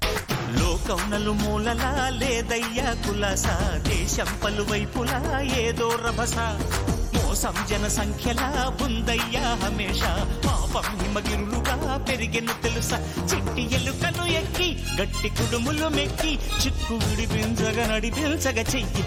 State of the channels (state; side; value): identical; both; correlation 1.00